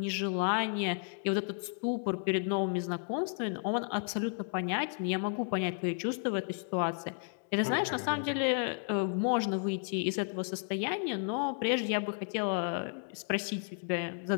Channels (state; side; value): silent; right; 56 dB below the other